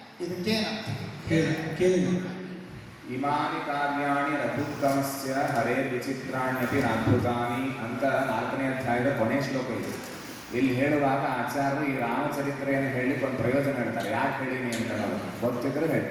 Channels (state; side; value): identical; both; correlation 1.00